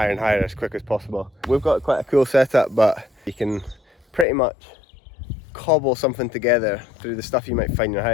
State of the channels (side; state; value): right; drops out; at 4.2 s